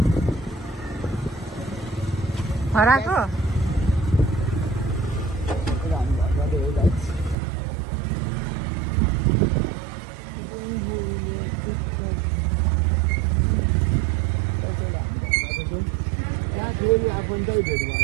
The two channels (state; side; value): drops out; left; at 7.4 s